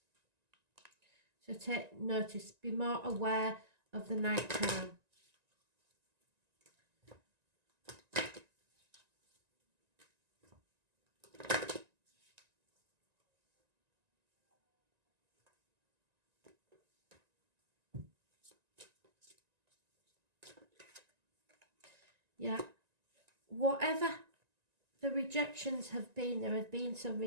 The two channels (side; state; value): left; late; 1.9 ms